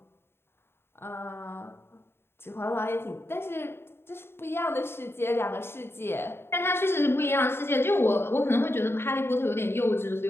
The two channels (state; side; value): late; right; 0.11 ms